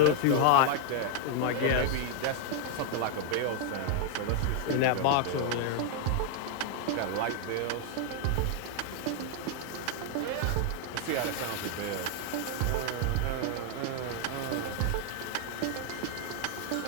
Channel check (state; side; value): different; both; correlation 0.00